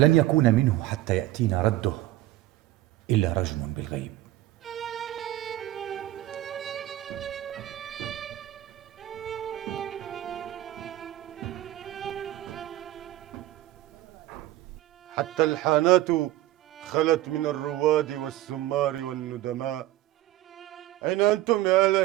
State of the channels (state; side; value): quieter; left; 15.2 dB